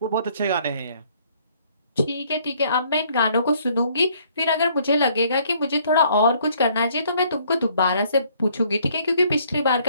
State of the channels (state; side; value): inverted; both; correlation -0.63